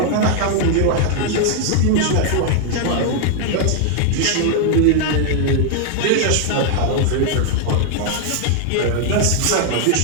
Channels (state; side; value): different; both; correlation 0.00